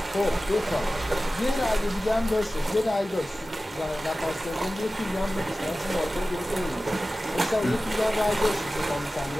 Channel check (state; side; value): normal; both; correlation 0.96